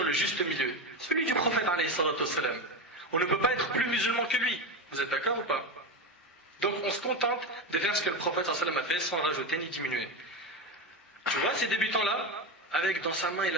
le juste milieu. Celui du prophète, alayhi salatu wassalam. On ne peut pas être plus musulman que lui. Vous êtes d'accord ou pas? Donc on se contente de faire ce que le prophète sallallahu alayhi wa sallam a fait sans rajouter ni diminuer. Tu vois ces débutants-là, avec dans sa main il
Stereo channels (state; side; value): normal; both; correlation 0.17